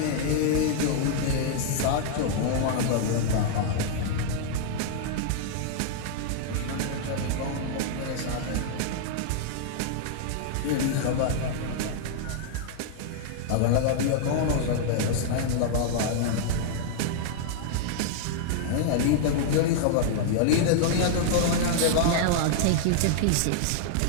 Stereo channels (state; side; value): different; both; correlation -0.01